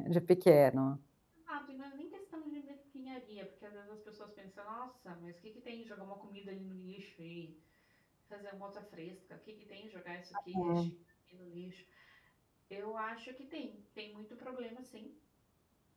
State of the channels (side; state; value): both; identical; correlation 1.00